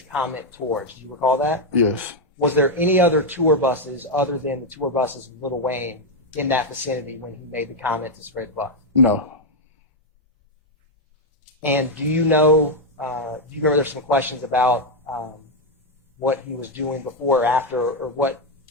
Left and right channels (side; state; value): both; normal; correlation 0.02